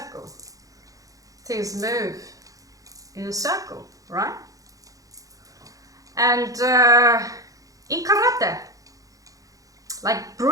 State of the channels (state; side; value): late; left; 0.17 ms